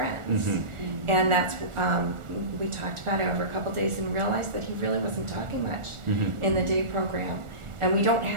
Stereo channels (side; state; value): left; late; 1.4 ms